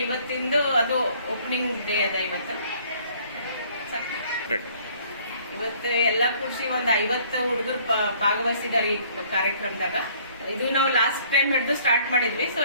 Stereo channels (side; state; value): both; inverted; correlation -0.58